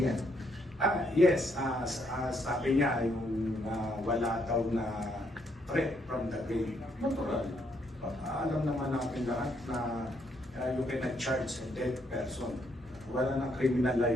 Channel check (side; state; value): both; normal; correlation 0.73